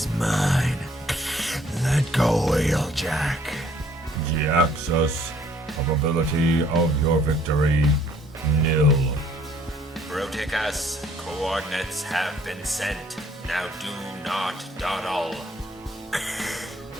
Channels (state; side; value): normal; both; correlation 0.61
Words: mine. Let go, Wheeljack. Jhiaxus, probability of your victory, nil. Bruticus, coordinates have been sent. Now do not dawdle.